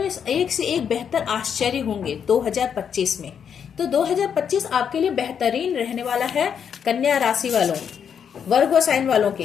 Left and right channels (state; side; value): quieter; right; 7.7 dB